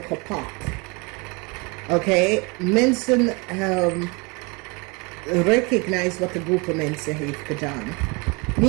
kapot. Oké, mensen recognize wat de groep mensen heeft gedaan.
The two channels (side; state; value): left; quieter; 29.0 dB